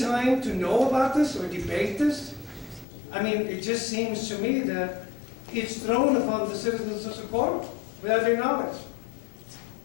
to know about this or debate this? I mean, it just seems to me that it's thrown upon the citizens of Socorro without their knowledge.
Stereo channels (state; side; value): drops out; right; at 2.9 s